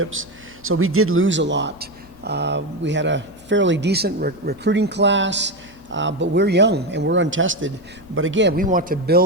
so we did lose a lot. We had a fairly decent recruiting class. But we're young and we're untested. But again, we want to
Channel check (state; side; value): normal; both; correlation 0.13